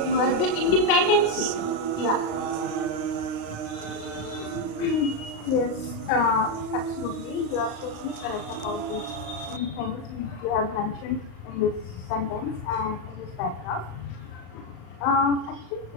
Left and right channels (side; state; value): right; late; 35 ms